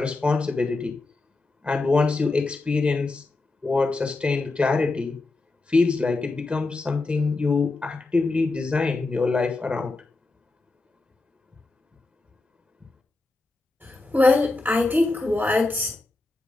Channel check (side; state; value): right; quieter; 3.3 dB